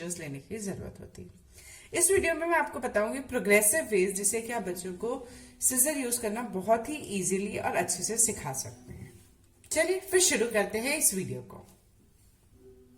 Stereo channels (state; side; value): identical; both; correlation 1.00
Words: लेने की जरूरत होती है। इस वीडियो में मैं आपको बताऊंगी प्रोग्रेसिव वेज जिससे कि आप बच्चों को सीजर यूज करना बहुत ही इजीली और अच्छे से सिखा सकते हैं। चलिए फिर शुरू करते हैं इस वीडियो को।